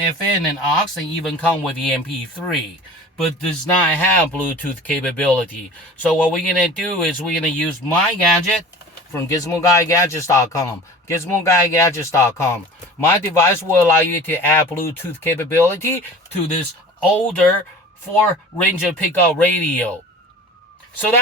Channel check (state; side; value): normal; both; correlation 0.41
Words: and aux, and even come with the MP3, but does not have Bluetooth capability. So what we're going to do is we're going to use my gadget from GizmoGuyGadgets.com. GizmoGuyGadgets.com. My device will allow you to add Bluetooth capability to this older 4-Ranger pickup radio. So